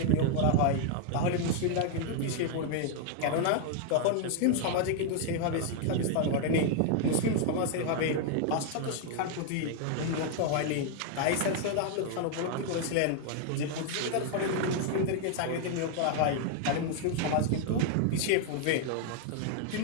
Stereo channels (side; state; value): both; different; correlation 0.00